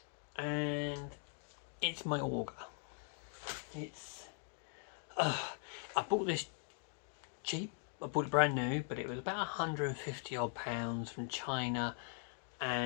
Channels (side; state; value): right; silent; 51 dB below the other